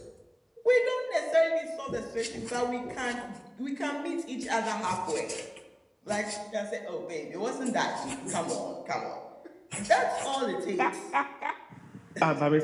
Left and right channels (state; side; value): identical; both; correlation 1.00